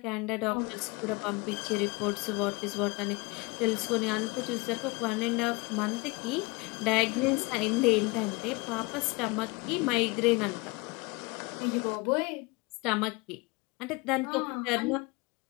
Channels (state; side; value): quieter; right; 26.1 dB